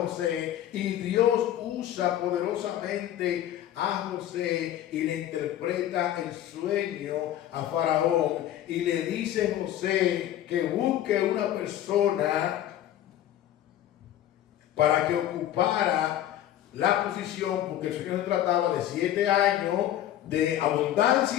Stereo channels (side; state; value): right; quieter; 12.1 dB